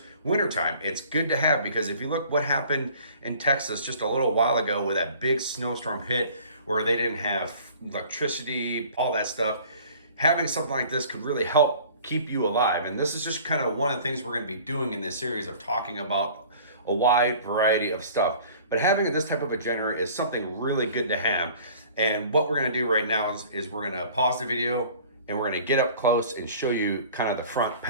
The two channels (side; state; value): both; inverted; correlation -0.48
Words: wintertime. It's good to have, because if you look what happened in Texas just a little while ago with that big snowstorm hit where they didn't have electricity, all that stuff, having something like this could really help keep you alive. And this is just kind of one of the things we're going to be doing in this series of talking about a wide variety of stuff. But having this type of a generator is something really good to have. And what we're going to do right now is we're going to pause the video and we're going to get up close and show you kind of the front